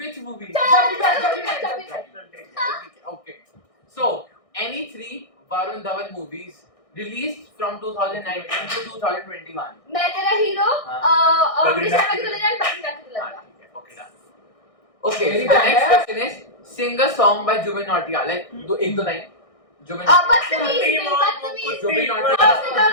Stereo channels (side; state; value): right; late; 1.6 ms